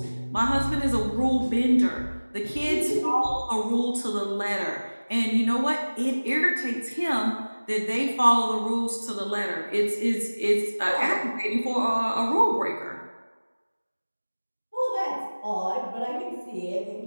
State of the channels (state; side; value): inverted; both; correlation -1.00